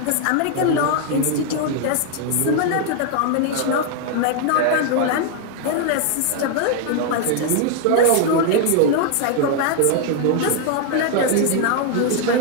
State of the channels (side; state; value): both; different; correlation 0.00